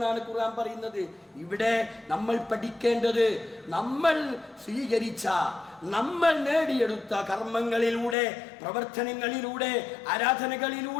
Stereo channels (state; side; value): drops out; right; at 8.2 s